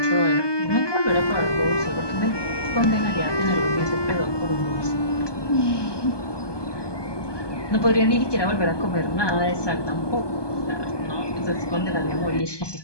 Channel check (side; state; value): right; late; 1.2 ms